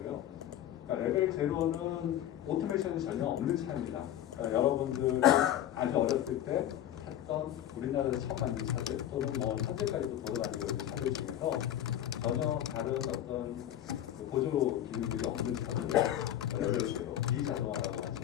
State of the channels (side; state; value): right; quieter; 11.6 dB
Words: 그러니까 레벨 0는 오토메이션이 전혀 없는 차입니다. 그러니까 여러분들 아주 어렸을 때 했던 우리나라에서 처음 만든 차들 또는 뭐 현재까지도 돌아다니고 있는 차들 중에서 전혀 다른 어떤 보조 기능들이 없는 차들 레벨 0 비자동화라고